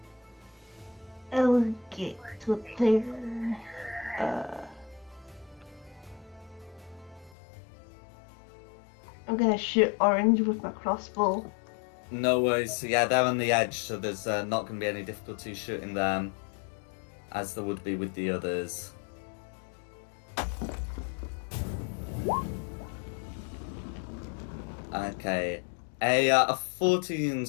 I'll get up there. I'm gonna shoot orange with my crossbow. No worries. Yeah, they're on the edge, so there's not going to be any difficulty shooting them, as there would be with the others. Okay. A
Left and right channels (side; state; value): right; drops out; at 7.3 s